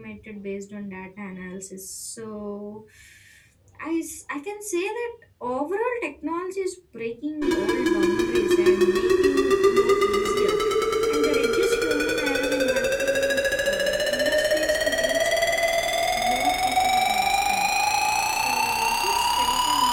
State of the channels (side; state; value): both; identical; correlation 1.00